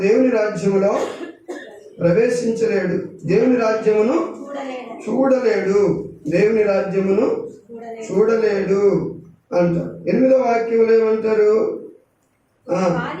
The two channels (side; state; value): both; identical; correlation 1.00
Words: దేవుని రాజ్యములో ప్రవేశించలేడు, దేవుని రాజ్యమును చూడలేడు, దేవుని రాజ్యమును చూడలేడు అంటారు. 8వ వాక్యంలో ఏమంటారు?